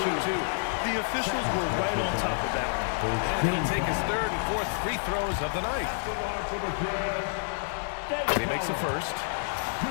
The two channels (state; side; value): silent; right; digital silence